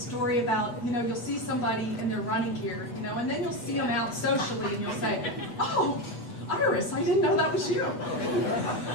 about, you know, you'll see somebody in their running gear, you know, and then you'll see them out socially and you'll say, oh, Iris, I didn't know that was you.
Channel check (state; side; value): late; right; 8.2 ms